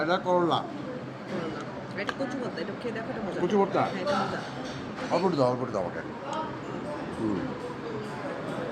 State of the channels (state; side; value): identical; both; correlation 1.00